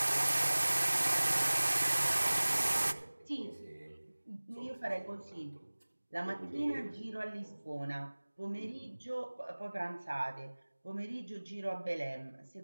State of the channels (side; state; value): both; inverted; correlation -1.00